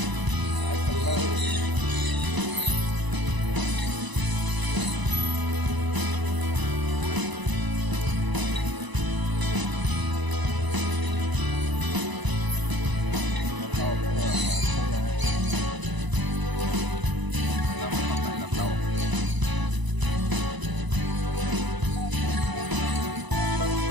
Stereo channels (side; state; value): left; late; 1.0 ms